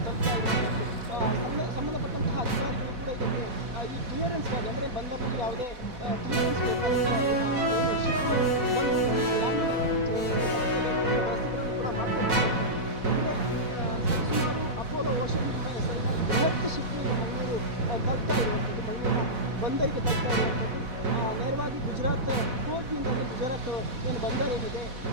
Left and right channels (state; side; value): late; left; 4.1 ms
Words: ತಲುಪ್ತಾ ಇರುವಂಥದ್ದು. ಸಂಬಂಧಪಟ್ಟಂತಹ ಅಧಿಕಾರಿಗಳು ಕೂಡ ಇದಕ್ಕೆ ಈ ಕ್ಲಿಯರೆನ್ಸ್ಗಾಗಿ ಅಂದರೆ ಬಂದರಲ್ಲಿ ಯಾವುದೇ ಕ್ಲಿಯರೆನ್ಸ್ ಬೇಕಾದಂತೆ ಶಿಪ್ ಬಂದು ವ್ಯವಸ್ಥೆಗಳನ್ನು ಕೂಡ ಮಾಡಿಕೊಡ್ತಾರೆ. ಅಂದರೆ ಸರಿಸುಮಾರು ಅಪೋಲೋ ಓಷನ್ ಎಂಬ ಹೆಸರಿನ ಬೃಹತ್ ಶಿಪ್ ಈಗ ಮಂಗಳೂರು ತಲುಪ್ತಾ ಇರುವಂಥದ್ದು, ಮಂಗಳೂರಿನ ಬಂದರಿಗೆ ತಲುಪ್ತಾ ಇರುವಂಥದ್ದು. ನೇರವಾಗಿ ಗುಜರಾತ್ ಕೋರ್ಟ್ನಿಂದ ಗುಜರಾತ್ ಏನು ಬಂದರ್ ಏನಿದೆ,